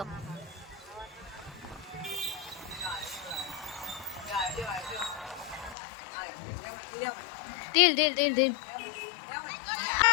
ઢીલ ઢીલ ઢીલ ઢીલ.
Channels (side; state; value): right; drops out; at 5.8 s